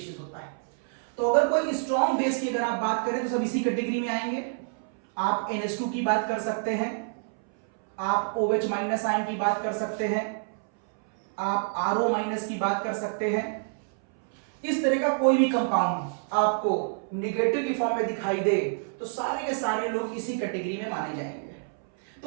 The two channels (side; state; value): left; silent; 60 dB below the other